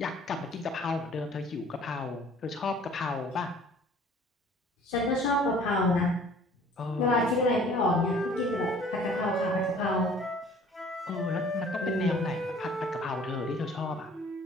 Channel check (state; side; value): normal; both; correlation 0.52